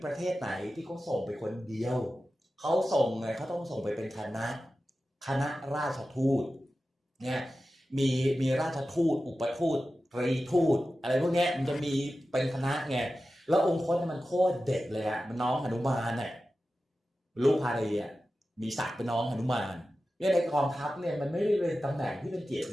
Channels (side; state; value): both; normal; correlation 0.94